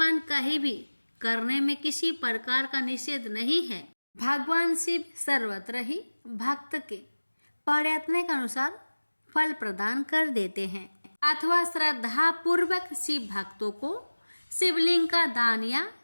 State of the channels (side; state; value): both; inverted; correlation -1.00